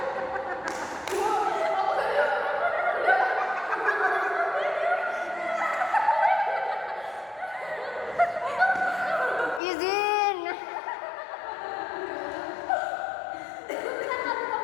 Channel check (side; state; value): right; drops out; at 9.6 s